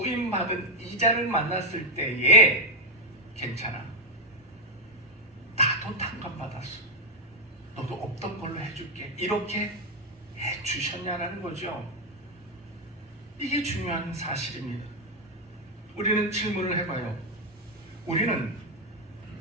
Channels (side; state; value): both; normal; correlation 0.01